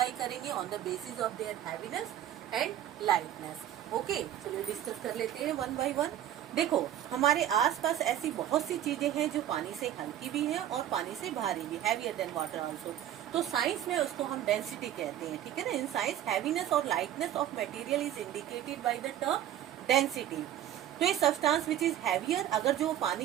करेंगे on the basis of there heaviness and lightness. Okay, चलिए डिस्कस कर लेते हैं वन बाय वन। देखो, हमारे आसपास ऐसी बहुत सी चीजें हैं जो पानी से हल्की भी हैं और पानी से भारी भी, हैवियर देन वाटर आल्सो। तो साइंस में उसको हम डेंसिटी कहते हैं। ठीक है ना, इन साइंस हैवीनेस और lightness of material is indicated by the term density. तो ये सब्सटेंस विच इज हैवियर, अगर जो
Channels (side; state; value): left; quieter; 11.5 dB